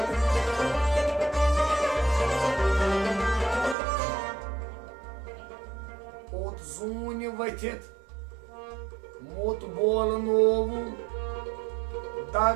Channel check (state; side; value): drops out; left; at 3.8 s